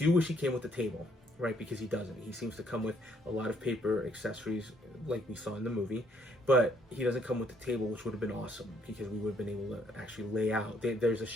wish he came with the table, right? Because he doesn't. He seems to come with a lot of paper accessories like we saw in the movie, but he doesn't come with the table, which would have been awesome, because we would have been able to actually lay out. There's a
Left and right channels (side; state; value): both; normal; correlation 0.67